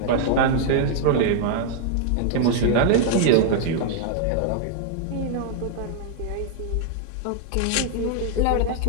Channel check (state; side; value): different; both; correlation 0.00